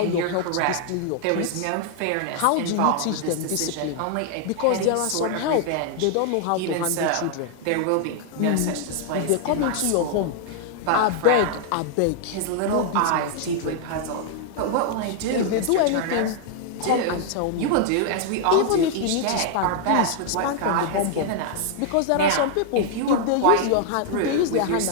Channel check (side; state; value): both; different; correlation 0.00